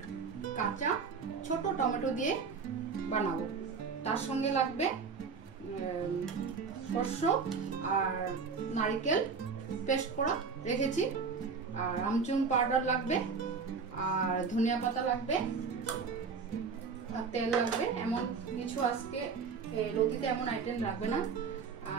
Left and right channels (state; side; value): quieter; left; 5.3 dB